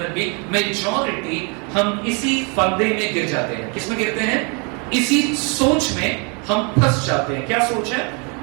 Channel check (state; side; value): quieter; left; 34.2 dB